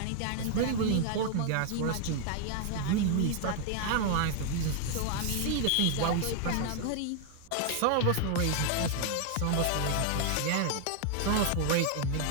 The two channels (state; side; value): different; both; correlation 0.00